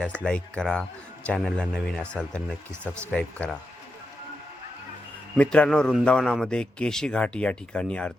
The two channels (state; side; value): normal; both; correlation 0.87